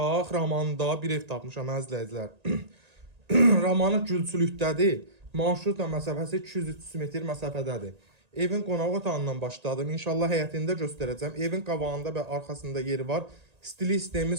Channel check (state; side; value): late; left; 1.9 ms